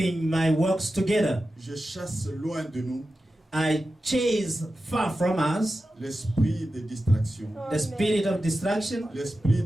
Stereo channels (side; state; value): both; normal; correlation 0.92